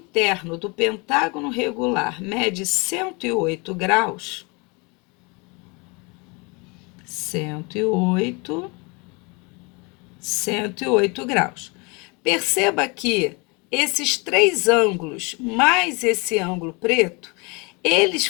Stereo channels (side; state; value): right; quieter; 29.4 dB